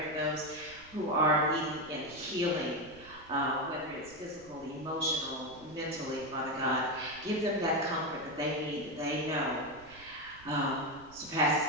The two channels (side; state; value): right; noise; rumble, 23 dB below the sound